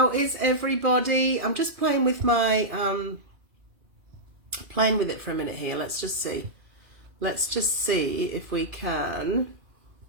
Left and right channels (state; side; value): late; left; 2.4 ms